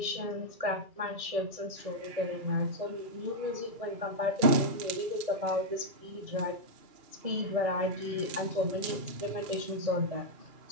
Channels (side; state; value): left; late; 2.3 ms